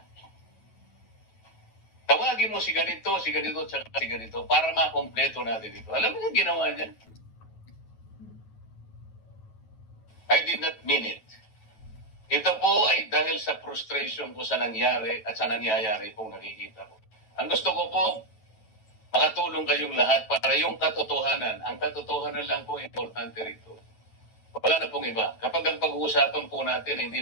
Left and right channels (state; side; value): late; right; 9.2 ms